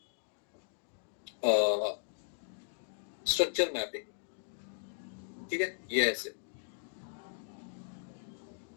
स्ट्रक्चर मैपिंग, ठीक है। ये ऐसे,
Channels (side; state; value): right; silent; digital silence